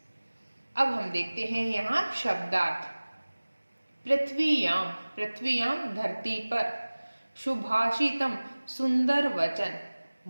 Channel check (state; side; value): inverted; both; correlation -1.00